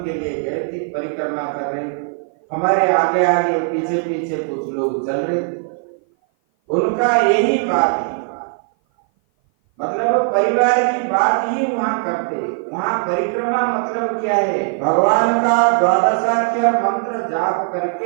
के लिए गए थे, परिक्रमा कर रहे थे, हमारे आगे आगे पीछे पीछे कुछ लोग चल रहे थे। उनका यही बात है, मतलब परिवार की बात ही वहां करते। वहां परिक्रमा मतलब क्या है? भगवान का द्वादशाक्षर मंत्र जाप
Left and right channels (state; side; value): silent; left; 56 dB below the other